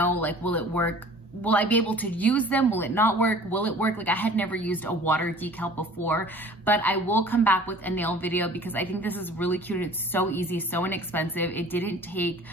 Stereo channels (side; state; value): both; normal; correlation 0.47